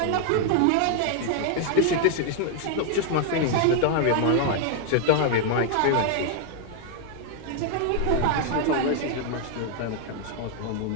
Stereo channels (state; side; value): different; both; correlation 0.00